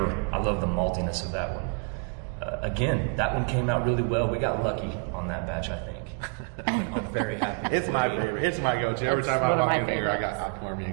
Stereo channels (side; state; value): left; quieter; 37.1 dB